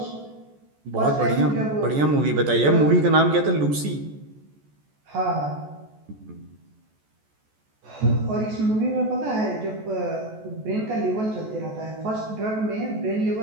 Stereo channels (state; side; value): late; left; 14 ms